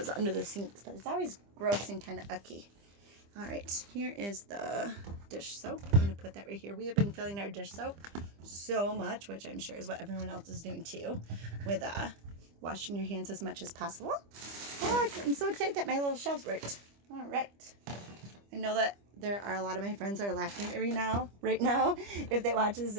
under the sinks, but it's always gross and kind of icky. All right, here is the dish soap. I'm going to put that right here. We have been filling our dish soap so much, which I'm sure is what everyone else is doing too, with washing your hands as much as possible. Oh, I'm so excited that my little shelves worked. All right. I know that there are a lot of my friends that are laughing at me right now, if they watch this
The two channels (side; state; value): left; late; 25 ms